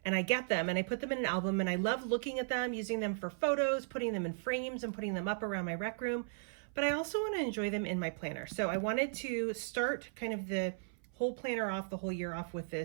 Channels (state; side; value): silent; left; 54 dB below the other